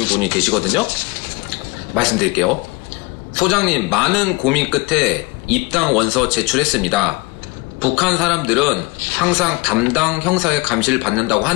분이 계시거든요. 말씀드릴게요. 소장님, 많은 고민 끝에 입당 원서 제출했습니다. 북한 사람들은 항상 담당 형사의 감시를 받는다고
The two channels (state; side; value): quieter; right; 24.3 dB